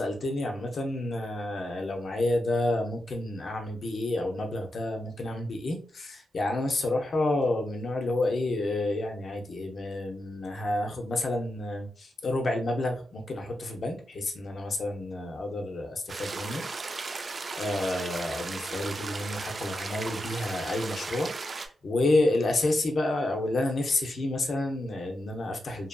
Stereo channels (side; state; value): both; normal; correlation 0.87